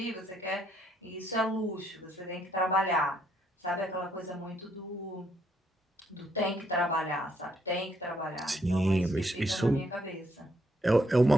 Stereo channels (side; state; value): both; normal; correlation 0.72